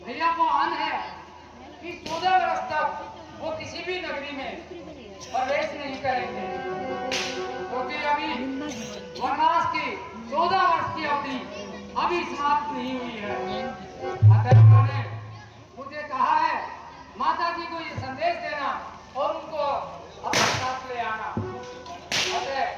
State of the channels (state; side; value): identical; both; correlation 1.00